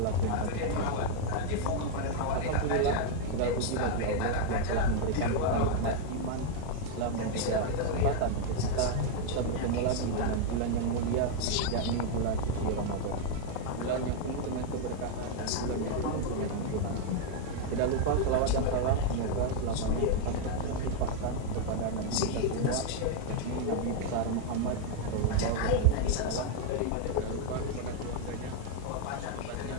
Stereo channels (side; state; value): both; different; correlation 0.00